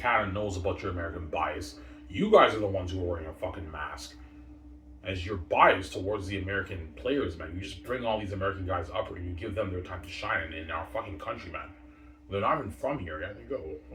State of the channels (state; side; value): identical; both; correlation 1.00